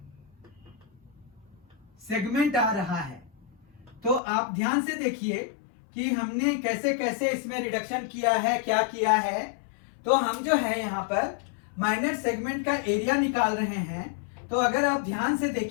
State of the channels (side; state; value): right; drops out; at 4.2 s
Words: सेगमेंट आ रहा है, तो आप ध्यान से देखिए कि हमने कैसे कैसे इसमें रिडक्शन किया है, क्या किया है। तो हम जो है यहाँ पर माइनर सेगमेंट का एरिया निकाल रहे हैं, तो अगर आप ध्यान से